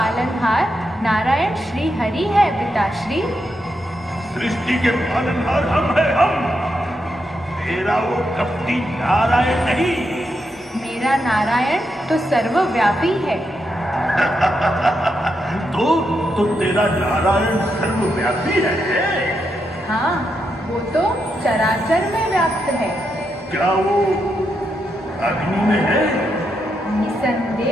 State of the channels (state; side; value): normal; both; correlation 0.83